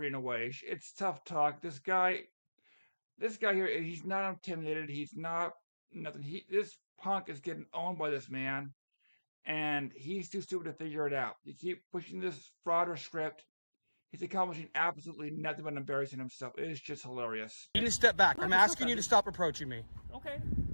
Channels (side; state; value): both; inverted; correlation -1.00